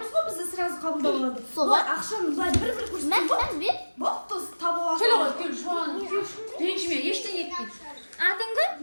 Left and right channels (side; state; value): both; inverted; correlation -1.00